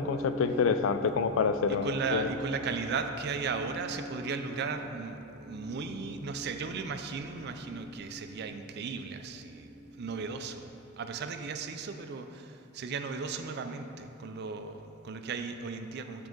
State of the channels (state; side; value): normal; both; correlation 0.03